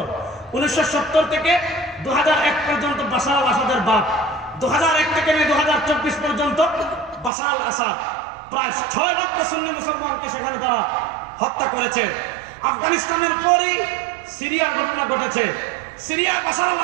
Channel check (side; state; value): left; drops out; at 7.3 s